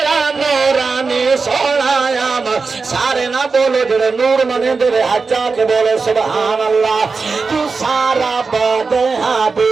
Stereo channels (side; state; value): left; quieter; 4.5 dB